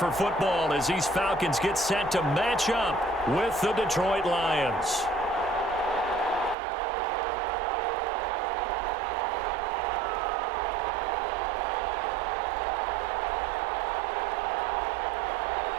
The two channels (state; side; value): drops out; left; at 6.6 s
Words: football as these Falcons get set to match up with the Detroit Lions.